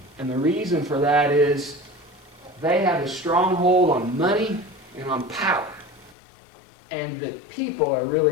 And the reason for that is they have a stronghold on money and on power. And the people are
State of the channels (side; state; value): right; drops out; at 6.2 s